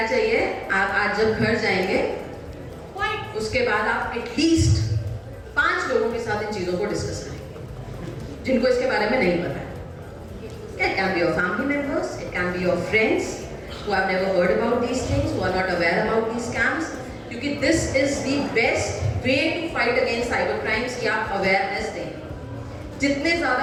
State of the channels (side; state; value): both; identical; correlation 1.00